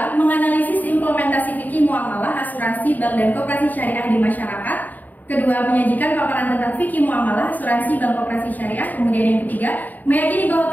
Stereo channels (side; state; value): right; late; 0.083 ms